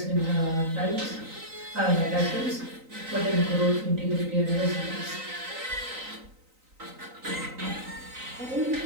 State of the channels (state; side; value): late; left; 3.9 ms